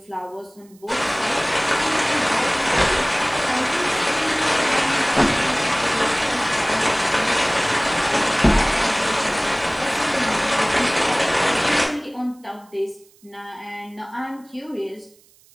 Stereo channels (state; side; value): noise; right; hiss, 30 dB below the sound